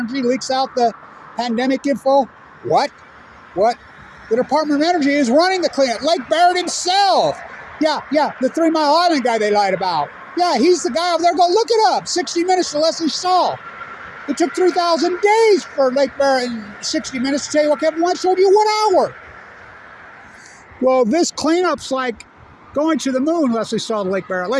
leaks out the pandemic info? What? The Department of Energy is running the cleanup. Lake Barrett himself. Yeah, the 3 Mile Island guy they lied about. Yeah, he's the guy over there. Go look it up. 60 Minutes to Leslie Stahl. It took 3,000 days for Lake Barrett and 60 Minutes to tell you what Kevin White showed you 1 hour. Well, this cleanup's like going to the moon, Leslie Stahl to Lake Barrett.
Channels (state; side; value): identical; both; correlation 1.00